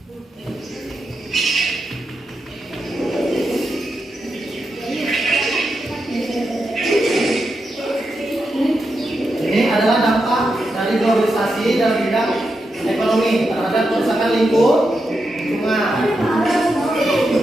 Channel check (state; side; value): normal; both; correlation 0.86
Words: Ini adalah dampak dari globalisasi dalam bidang ekonomi terhadap kerusakan lingkungan.